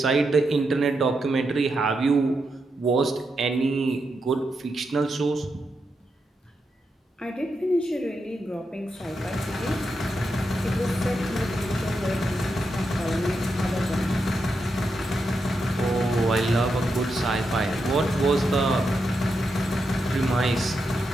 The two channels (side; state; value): both; normal; correlation 0.85